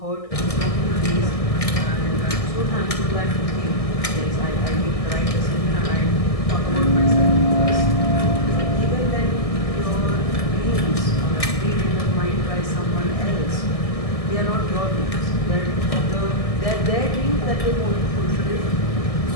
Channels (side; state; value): right; late; 1.6 ms